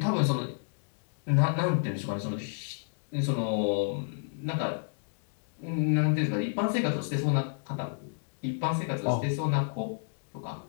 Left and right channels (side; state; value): right; silent; digital silence